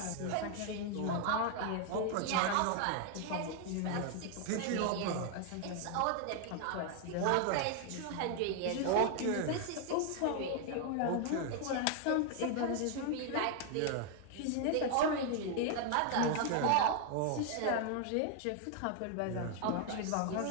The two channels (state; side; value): different; both; correlation 0.00